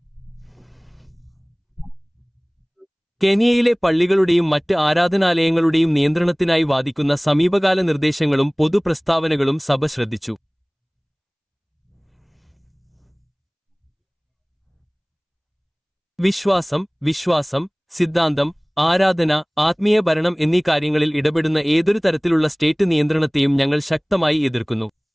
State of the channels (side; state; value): both; identical; correlation 1.00